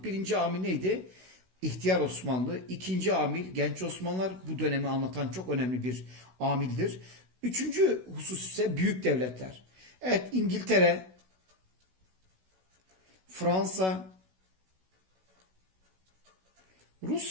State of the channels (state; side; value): late; left; 16 ms